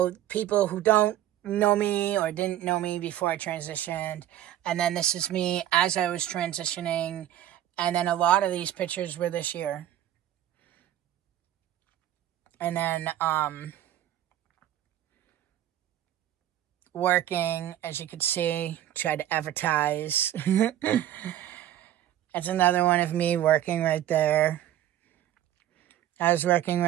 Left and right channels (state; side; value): quieter; left; 12.3 dB